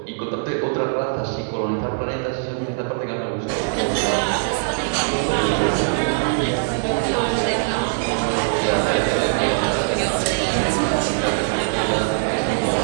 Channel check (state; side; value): silent; left; digital silence